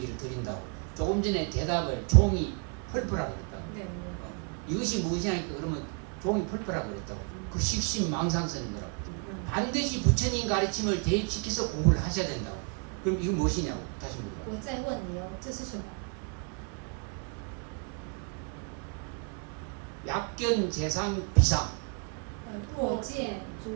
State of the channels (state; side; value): quieter; left; 37.7 dB